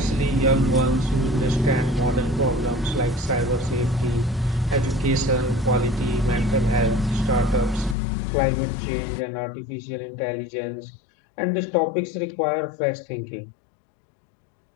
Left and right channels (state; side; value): drops out; right; at 8.0 s